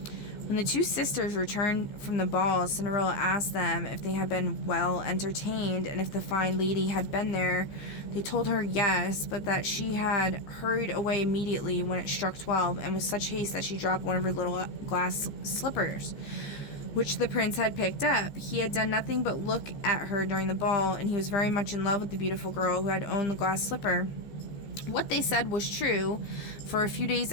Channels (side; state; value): right; late; 14 ms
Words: When the two sisters returned from the ball, Cinderella asked them if they had been well entertained and if the fine lady had been there. They told her yes, but that she had hurried away immediately when it struck 12, and with such haste that she dropped one of her little glass slippers, which the prince had picked up. He had done nothing but look at her during the ball, and he was very much in love with the beautiful girl who had owned the glass slipper. What they said was true, for a few days